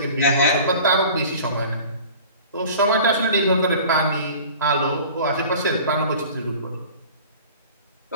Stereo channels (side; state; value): both; inverted; correlation -0.43